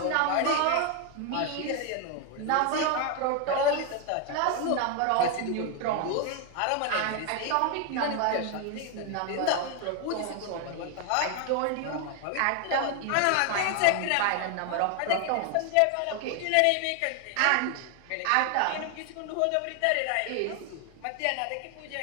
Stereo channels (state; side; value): different; both; correlation 0.01